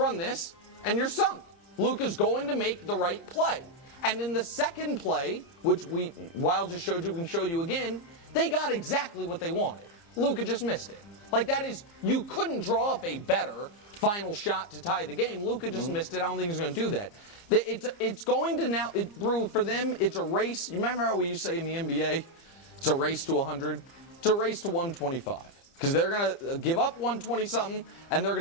this, and you're sunk. Luka's going to make the right play. And then the second play, which Wild just showed you, we can show you again, they got exactly what they wanted. Luka just missed it. Like, that is, you couldn't draw up a better final shot to tie the game. Luka just missed it. I don't think he's going to do that. It's going to now, Brew, for them, it's a race. You remember how we used to say in the NBA, it's a race to 100? It's a race to 125. Because they're going to give up 120-something, and they're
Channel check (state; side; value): late; right; 29 ms